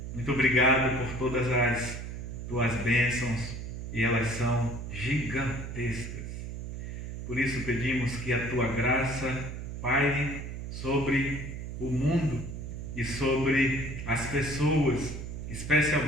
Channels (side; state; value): right; noise; hum, 7 dB below the sound